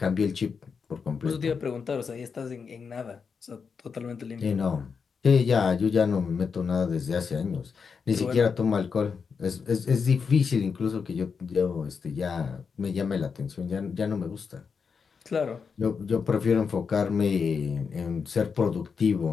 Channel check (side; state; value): right; quieter; 5.8 dB